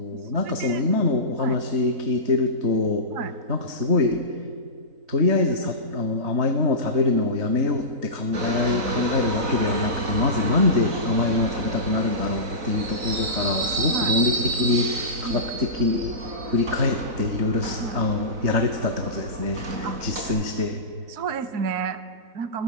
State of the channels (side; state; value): left; late; 3.9 ms